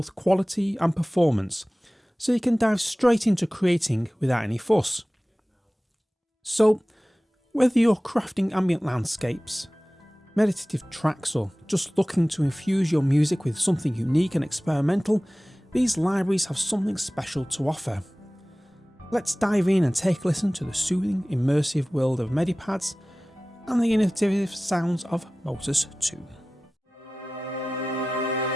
quality and performance, so you can dive straight into creating without any fuss. So, whether you're crafting ambient landscapes, meditative tracks, or just looking to infuse your music with something unique and experimental, these libraries have something special to offer. Let's dive in and take a listen to the soothing, immersive world of Medipads and the innovative sounds of Motus 2.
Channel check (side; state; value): both; normal; correlation 0.97